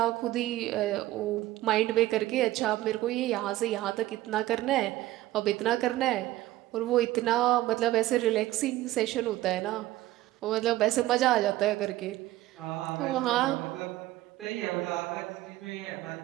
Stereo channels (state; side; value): quieter; left; 16.1 dB